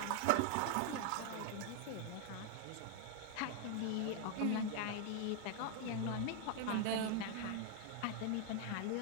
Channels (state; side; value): different; both; correlation 0.00